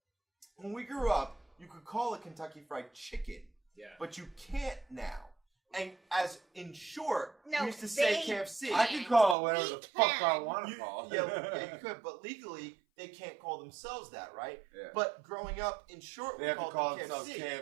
when we grew up, you could call it Kentucky Fried Chicken, Yeah. but you can't now. And as in short, No, we used to say they KFC. I can call it whatever We the fuck I can. want to call it. Yeah, you could, but legally they can't call themselves that, right? Yeah. But growing up, in short, They we have to called call them themselves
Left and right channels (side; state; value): left; drops out; at 9.3 s